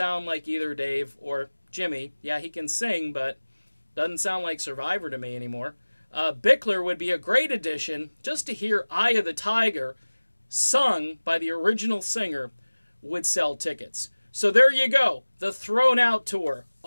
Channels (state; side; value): inverted; both; correlation -1.00